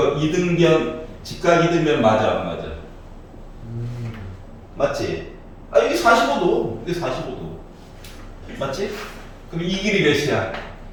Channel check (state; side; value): identical; both; correlation 1.00